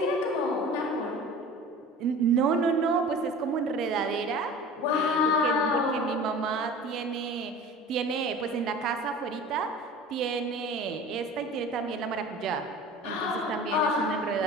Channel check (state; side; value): normal; both; correlation 0.40